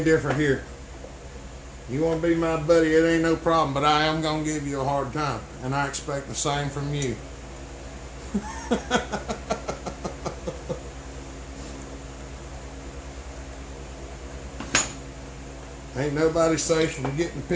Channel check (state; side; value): identical; both; correlation 1.00